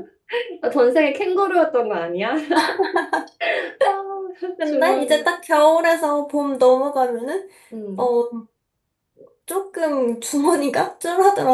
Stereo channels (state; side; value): identical; both; correlation 1.00